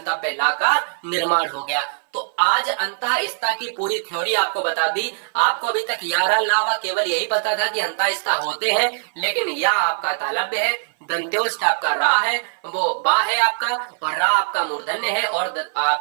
ला का निर्माण हो गया। तो आज अंतःस्था की पूरी थ्योरी आपको बता दी। आपको अभी तक यारा लावा केवल यही पता था कि अंतःस्था होते हैं, लेकिन या आपका तालव्य है, दंत्योष्ठ आपका रा है, वो बा है आपका, और रा आपका मूर्धन्य है, और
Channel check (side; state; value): left; silent; 58 dB below the other